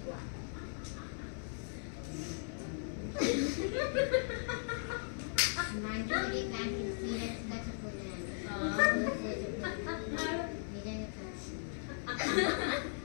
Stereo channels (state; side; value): silent; right; 53 dB below the other